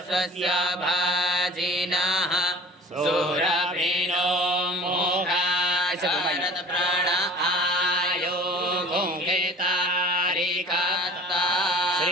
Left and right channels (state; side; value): normal; both; correlation 0.44